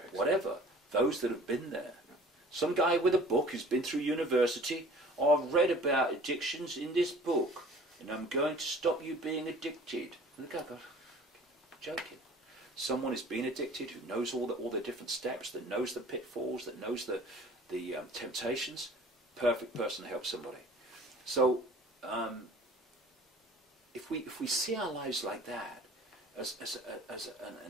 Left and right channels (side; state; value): both; normal; correlation 0.48